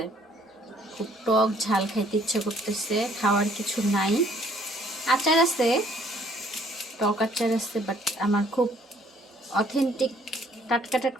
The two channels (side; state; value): both; normal; correlation 0.62